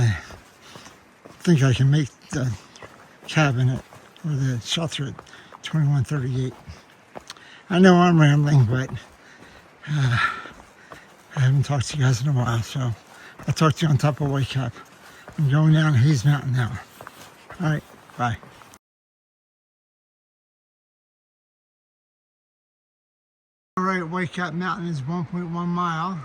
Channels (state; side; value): identical; both; correlation 1.00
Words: think I can make the cabin or the shelter at 21:38. I know I'm rambling, but I haven't talked to you guys in a while, so I'll talk to you on top of White Cap. I'm going down Hayes Mountain now. All right, bye. All right, White Cap Mountain is 1.1 mile,